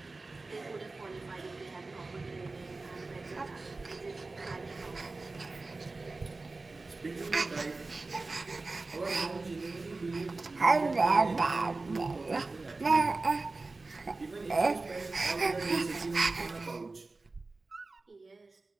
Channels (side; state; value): left; quieter; 3.5 dB